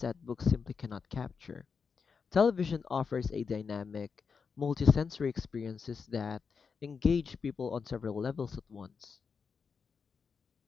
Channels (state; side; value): quieter; right; 5.6 dB